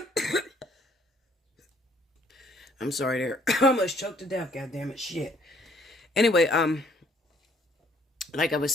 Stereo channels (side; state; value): both; normal; correlation 0.63